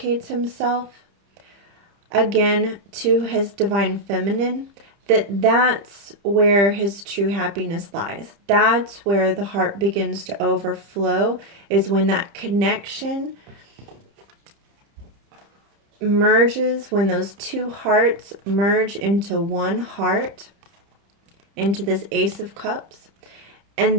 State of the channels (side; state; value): left; late; 30 ms